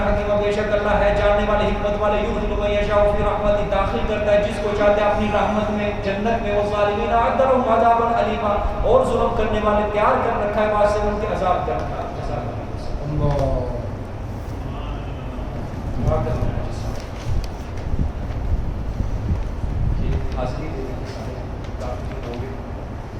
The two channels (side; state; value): both; identical; correlation 1.00